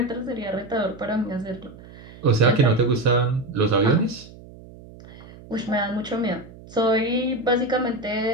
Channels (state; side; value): noise; right; hum, 19 dB below the sound